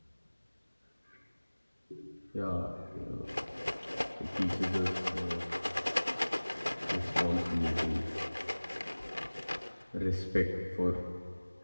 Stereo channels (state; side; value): inverted; both; correlation -1.00